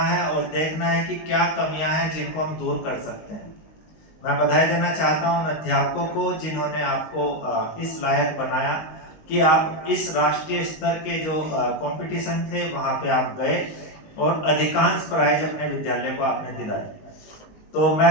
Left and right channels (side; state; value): right; late; 19 ms